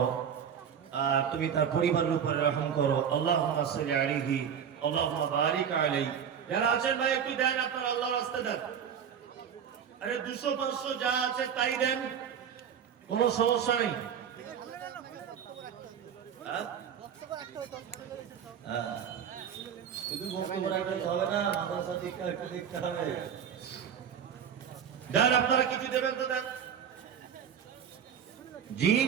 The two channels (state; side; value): quieter; left; 8.1 dB